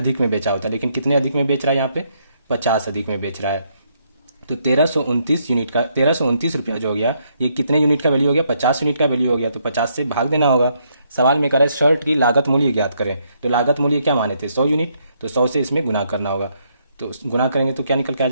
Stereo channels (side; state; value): both; inverted; correlation -0.74